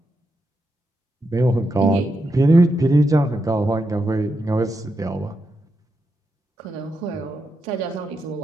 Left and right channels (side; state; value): both; normal; correlation 0.85